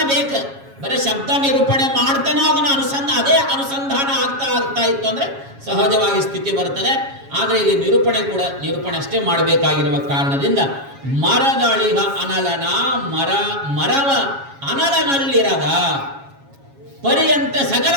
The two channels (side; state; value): left; late; 7.3 ms